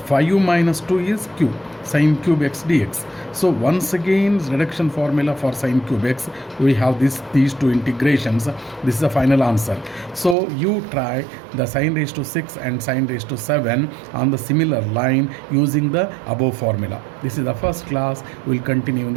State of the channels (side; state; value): left; drops out; at 10.4 s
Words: 5 minus 2 is q, sin cube x dx. So once again, reduction formula for sin cube x, we have these two integrations. This is the final answer. So you try the sin raised to 6 and sin raised to 7 on the similar line using the above formula. This is the first class. We'll continue in